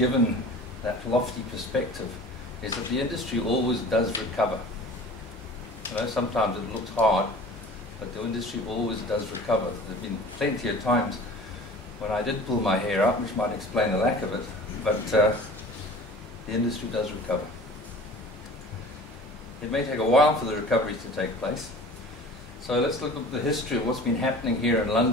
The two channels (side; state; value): both; normal; correlation 0.42